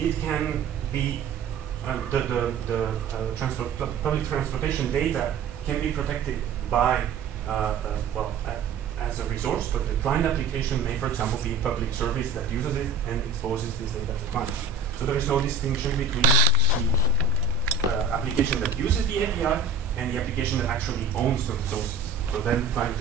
can be public transportation data can be protected by as a resource, but the client application may, for example, be a public service that uses it and exposes this data to client. So there is no distinction between the application that uses the API and the application that actually owns the resources. So then client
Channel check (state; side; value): quieter; left; 4.5 dB